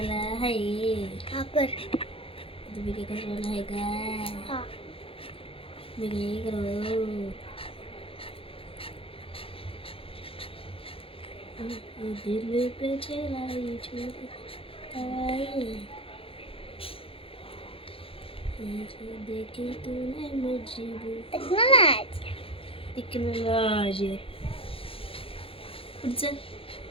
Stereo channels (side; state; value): right; late; 0.27 ms